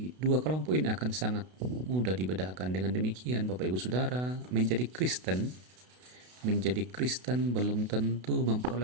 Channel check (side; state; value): left; late; 32 ms